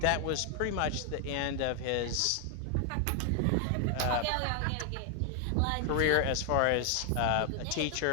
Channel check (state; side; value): different; both; correlation 0.00